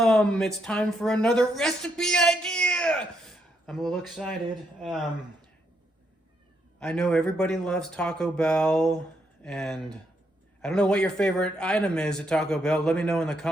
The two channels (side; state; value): both; normal; correlation 0.77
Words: It's time for another recipe idea. I'm a little excited. I know everybody loves Taco Bell, and I don't know what your favorite item is at Taco Bell. Let me know in the